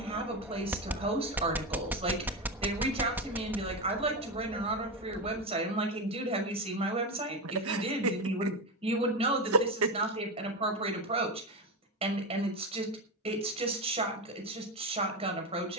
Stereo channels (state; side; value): normal; both; correlation 0.15